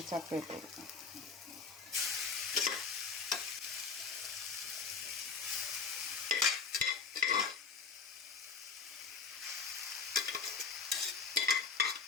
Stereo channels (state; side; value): quieter; right; 5.3 dB